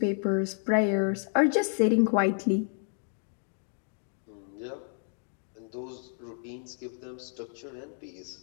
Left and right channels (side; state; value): right; silent; 57 dB below the other